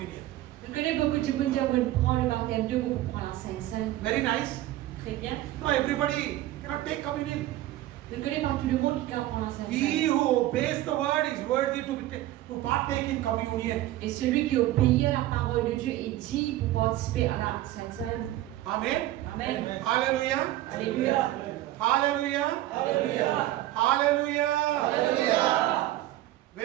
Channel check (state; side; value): quieter; left; 15.1 dB